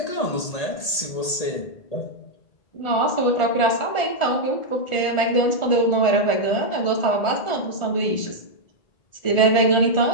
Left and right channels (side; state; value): right; late; 1.8 ms